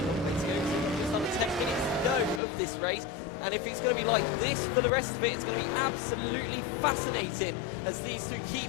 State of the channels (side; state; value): right; drops out; at 2.4 s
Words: long way to go. So just under 10 minutes to go of this race. And if it's going to be like this for the rest of it, it's going to be absolutely fascinating as these two keep